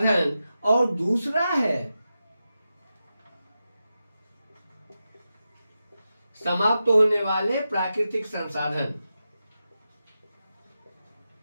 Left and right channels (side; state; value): both; inverted; correlation -0.90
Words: और दूसरा है समाप्त होने वाले प्राकृतिक संसाधन।